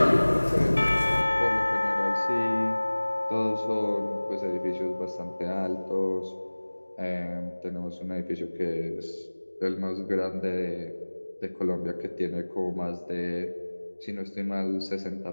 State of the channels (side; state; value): both; inverted; correlation -1.00